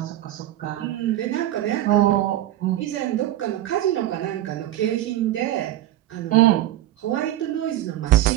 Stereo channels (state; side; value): quieter; left; 13.9 dB